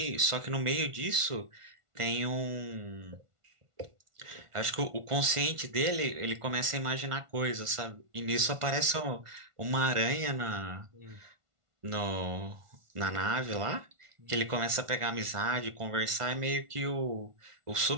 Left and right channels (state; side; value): late; left; 1.5 ms